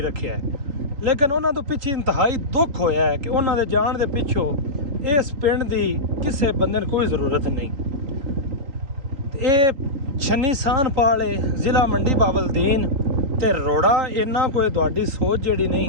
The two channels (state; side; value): late; left; 3.8 ms